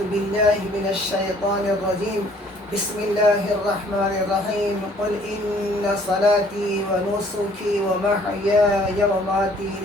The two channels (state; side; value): normal; both; correlation 0.58